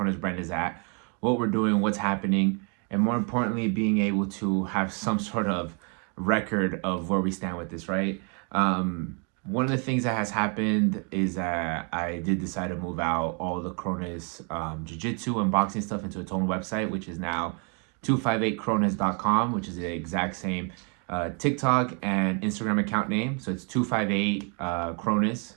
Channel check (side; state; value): left; quieter; 37.7 dB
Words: brand is at, what we're doing, what's happening, and more importantly, being able to have some sort of record of where we stand with this, right? One of the things that has happened is that I did decide to move out all the Kronis jiu-jitsu and boxing stuff into its own website, which is now 258kronis.com, which is the exact same TikTok and Instagram account name. So it's 258 Kronis,